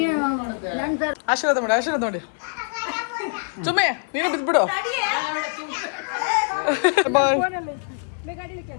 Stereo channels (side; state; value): right; silent; 63 dB below the other